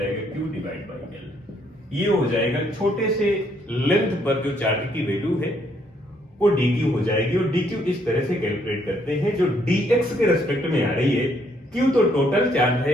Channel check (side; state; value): both; normal; correlation 0.69